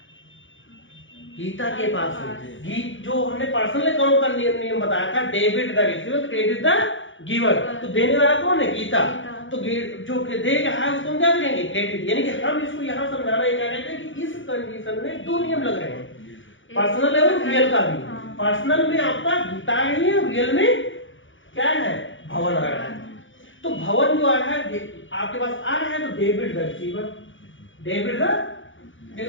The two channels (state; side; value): late; right; 0.56 ms